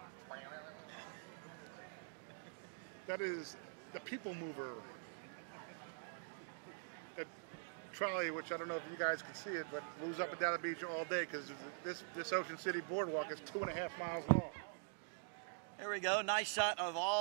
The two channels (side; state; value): left; silent; digital silence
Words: That is the people mover. That trolley, which I don't know if you guys can see it, but moves up and down the beach all day because this Ocean City boardwalk is 2.5 miles long. There we go. Nice shot of